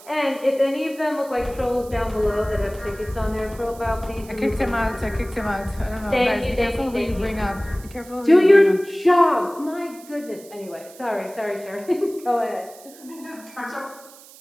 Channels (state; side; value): noise; right; hiss, 21 dB below the sound